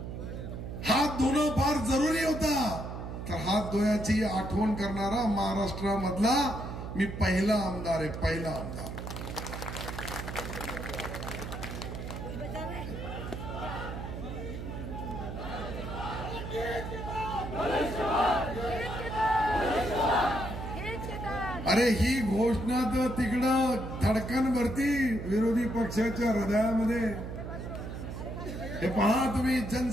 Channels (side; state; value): right; noise; hum, 7 dB below the sound